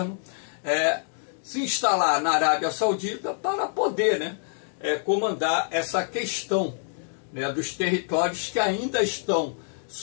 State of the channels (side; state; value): right; silent; digital silence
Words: se instalar na Arábia Saudita para poder comandar essa questão dos territórios que ainda estão